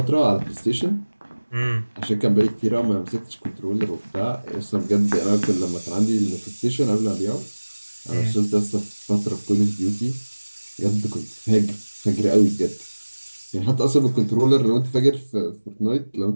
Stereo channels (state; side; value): inverted; both; correlation -1.00